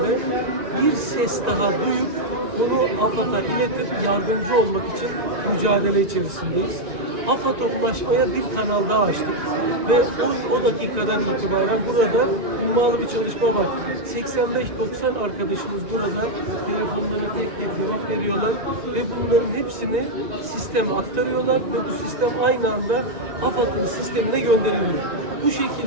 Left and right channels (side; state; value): left; late; 1.9 ms